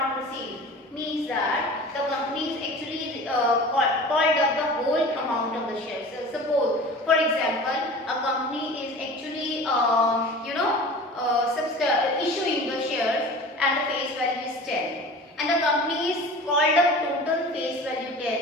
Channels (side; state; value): both; normal; correlation 0.39